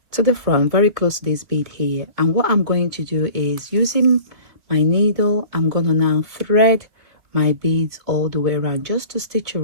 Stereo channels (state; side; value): late; left; 2.2 ms